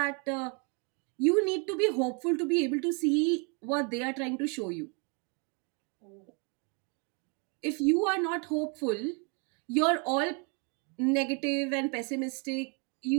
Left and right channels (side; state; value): left; quieter; 34.9 dB